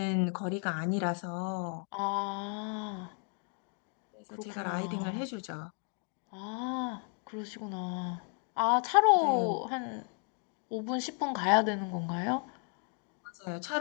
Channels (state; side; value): quieter; right; 38.4 dB